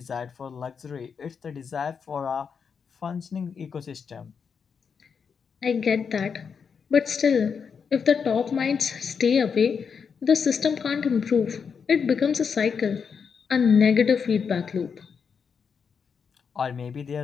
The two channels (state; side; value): quieter; right; 6.3 dB